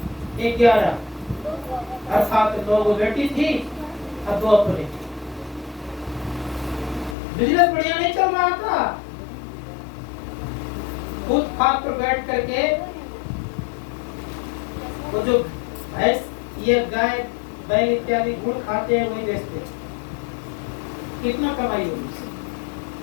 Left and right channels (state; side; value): drops out; right; at 7.2 s